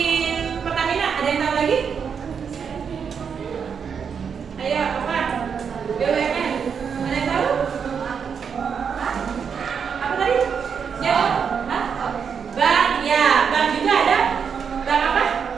Pertamina, ada yang tahu lagi? Ayo, apa? BUMN. Ada yang tahu? Apa tadi? Ya, bank, ya, bank juga ada. Bank apa?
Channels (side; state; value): left; quieter; 6.7 dB